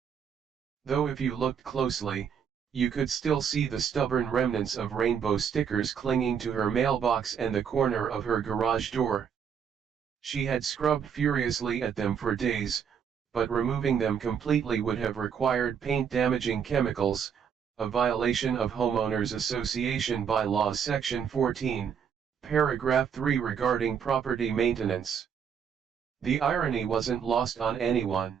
Though if you looked closely, you could still see the stubborn remnants of rainbow stickers clinging to her mailbox and the corner of her garage door. She had scrubbed furiously at them for days, but removing them completely would have required paint-damaging chemicals, a violation of Homeowners Association Bylaws Section 14, Paragraph 3 regarding property maintenance. The irony wasn't lost on anyone.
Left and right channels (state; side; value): quieter; left; 7.5 dB